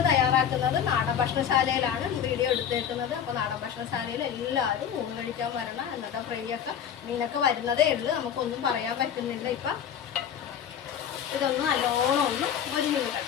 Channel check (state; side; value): quieter; right; 8.7 dB